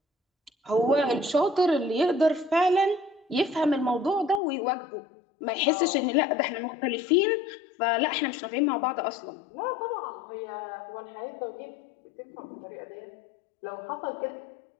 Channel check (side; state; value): right; drops out; at 4.4 s